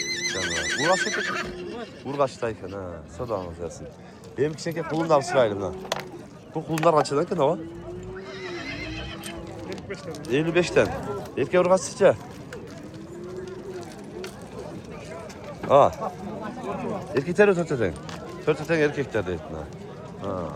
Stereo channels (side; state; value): both; identical; correlation 1.00